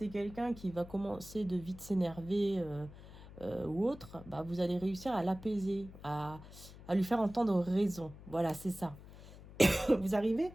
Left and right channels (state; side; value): noise; left; hum, 17 dB below the sound